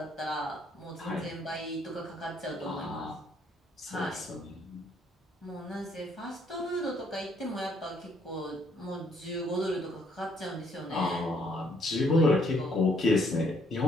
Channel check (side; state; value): both; normal; correlation 0.68